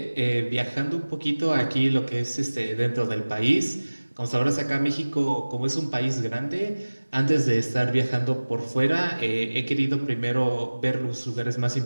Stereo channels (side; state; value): both; inverted; correlation -1.00